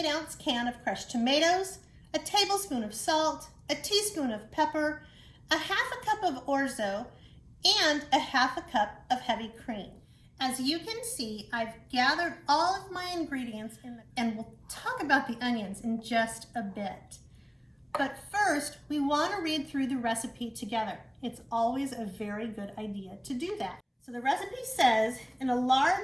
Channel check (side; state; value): both; identical; correlation 1.00